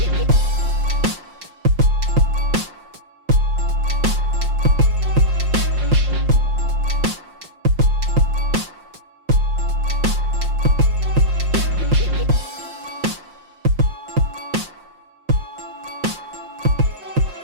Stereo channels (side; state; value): left; late; 5.6 ms